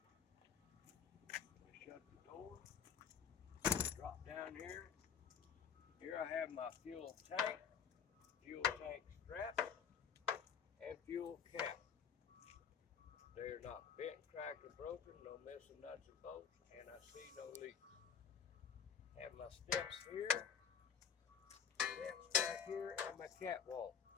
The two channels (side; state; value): right; quieter; 7.5 dB